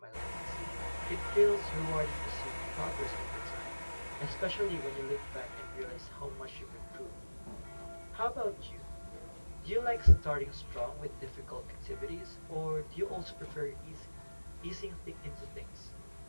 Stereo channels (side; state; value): both; inverted; correlation -1.00